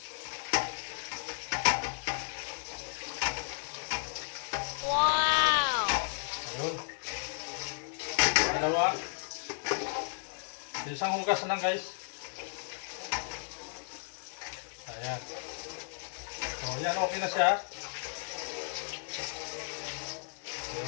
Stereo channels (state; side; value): silent; right; 55 dB below the other